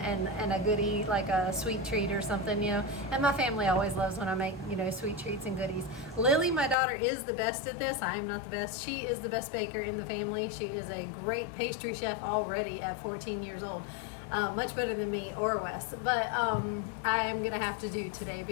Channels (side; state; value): right; drops out; at 6.8 s